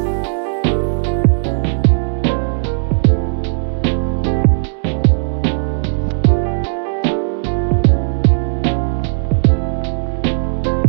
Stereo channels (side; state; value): left; silent; 68 dB below the other